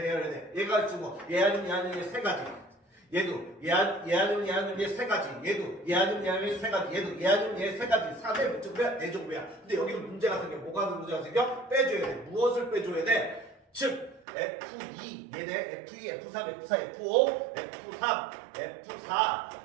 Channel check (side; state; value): left; drops out; at 14.2 s